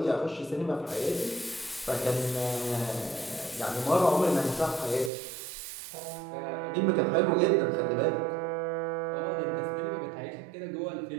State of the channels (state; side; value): drops out; left; at 5.1 s